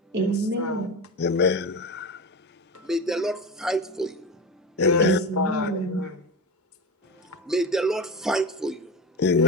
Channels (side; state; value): both; normal; correlation 0.25